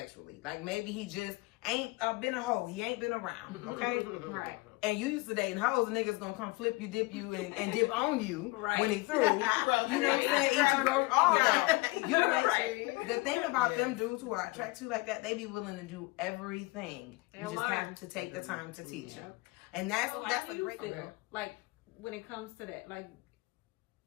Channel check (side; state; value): right; quieter; 23.4 dB